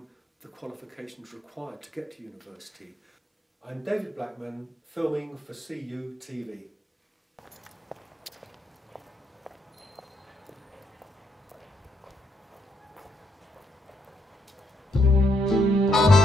the qualifications required to get to university. I'm David Blackman, filming for CU TV.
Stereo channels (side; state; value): both; normal; correlation 0.76